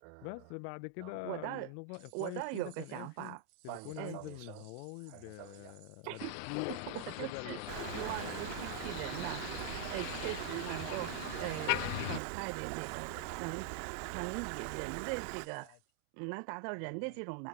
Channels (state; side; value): different; both; correlation 0.00